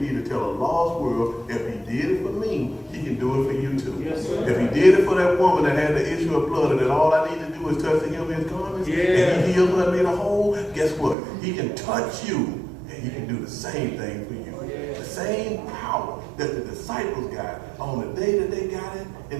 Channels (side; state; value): left; drops out; at 11.2 s